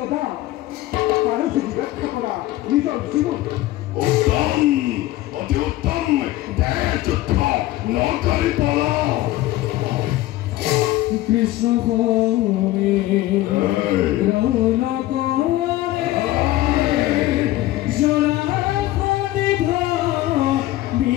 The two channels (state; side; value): quieter; right; 16.0 dB